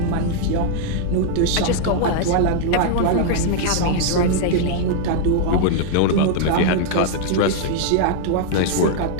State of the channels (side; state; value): both; different; correlation 0.00